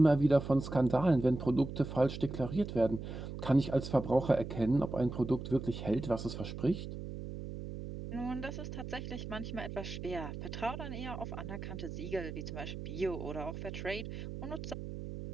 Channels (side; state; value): right; noise; hum, 8 dB below the sound